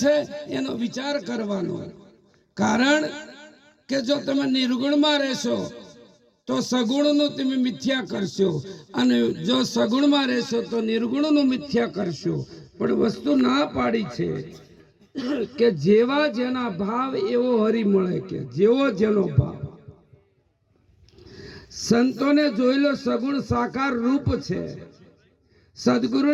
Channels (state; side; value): identical; both; correlation 1.00